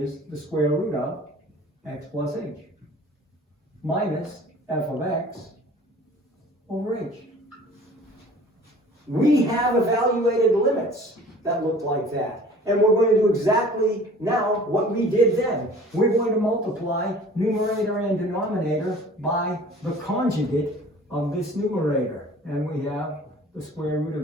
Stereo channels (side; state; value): both; normal; correlation 0.47